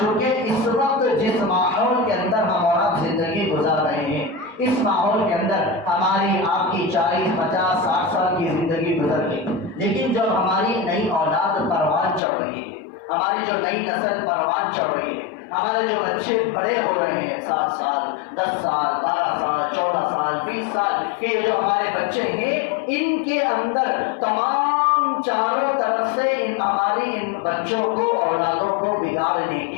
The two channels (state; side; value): drops out; right; at 12.2 s